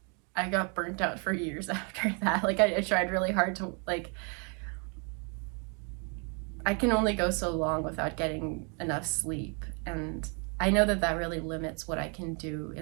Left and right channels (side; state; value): left; quieter; 36.4 dB